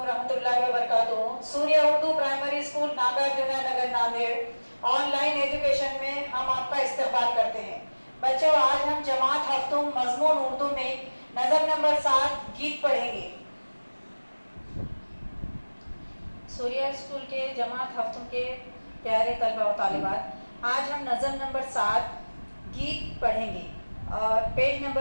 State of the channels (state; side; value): inverted; both; correlation -1.00